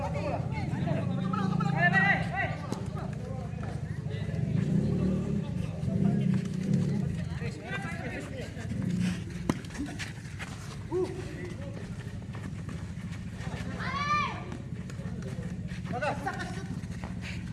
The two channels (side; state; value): both; identical; correlation 1.00